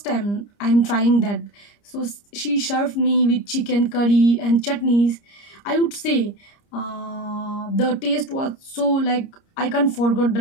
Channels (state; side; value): late; right; 30 ms